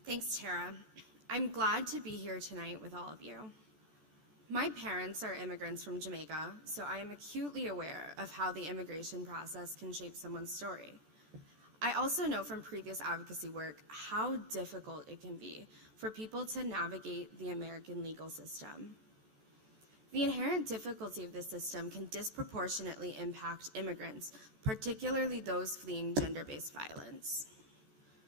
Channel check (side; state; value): left; late; 14 ms